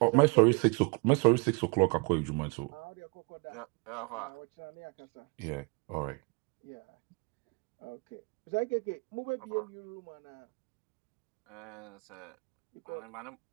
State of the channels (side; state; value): left; quieter; 31.6 dB